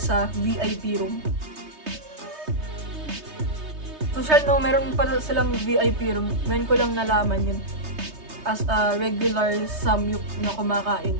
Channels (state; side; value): late; left; 3.2 ms